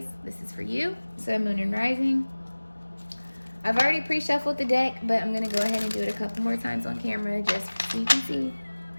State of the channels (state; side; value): inverted; both; correlation -1.00